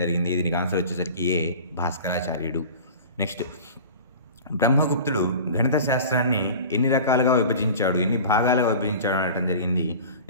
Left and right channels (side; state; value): both; inverted; correlation -0.38